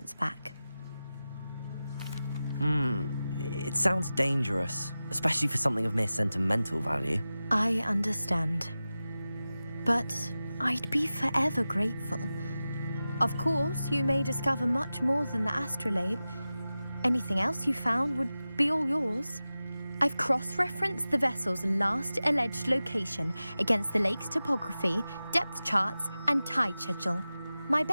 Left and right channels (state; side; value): inverted; both; correlation -0.95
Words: back. It sounds dangerous, especially for something of mere sentimental value. I understand. But I'd be forever grateful. Of course, you may discover much more than the astrolabe. Anything else you found would be all yours. I've cross-referenced the vessel's last alleged location against the lake's topography, depth charts, and tide schedule. My